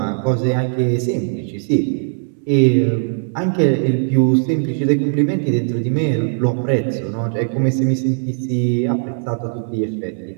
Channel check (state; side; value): silent; left; digital silence